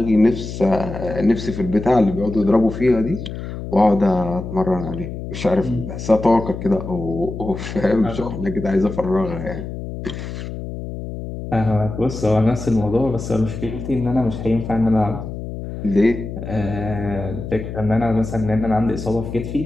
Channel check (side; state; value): left; noise; hum, 8 dB below the sound